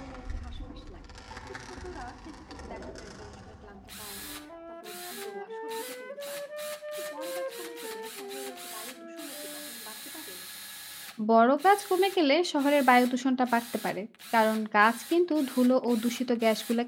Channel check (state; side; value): identical; both; correlation 1.00